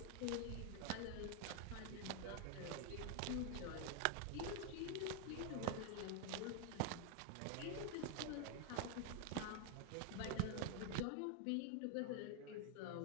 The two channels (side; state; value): both; different; correlation 0.00